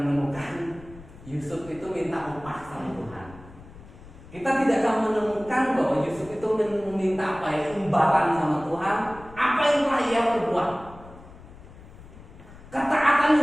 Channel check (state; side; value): noise; left; rumble, 19 dB below the sound